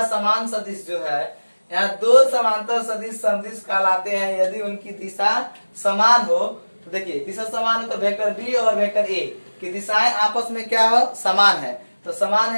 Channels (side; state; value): both; inverted; correlation -1.00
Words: समान सदिश जो है, यहाँ दो समांतर सदिश समदिश कहलाते हैं यदि उनकी दिशा समान हो। तो देखिए दिशा समान हो तो वेक्टर बी और वेक्टर ए की दिशाएं आपस में क्या हो, समान है। तो समान